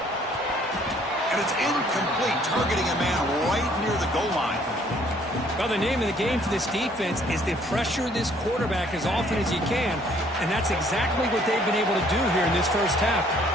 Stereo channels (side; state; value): both; normal; correlation 0.61